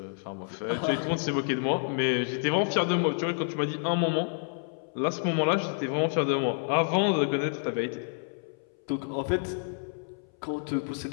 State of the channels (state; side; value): silent; right; 59 dB below the other